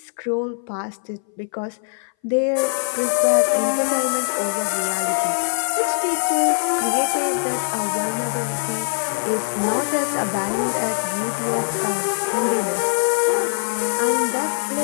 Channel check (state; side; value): silent; right; 59 dB below the other